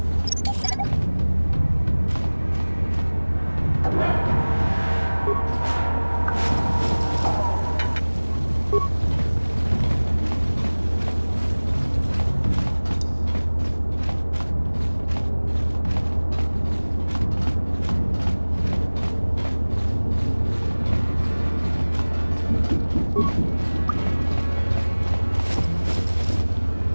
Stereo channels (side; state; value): both; inverted; correlation -1.00